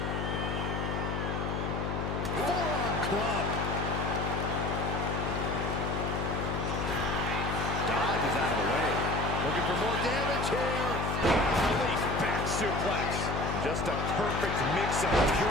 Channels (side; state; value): left; noise; hum, 1 dB below the sound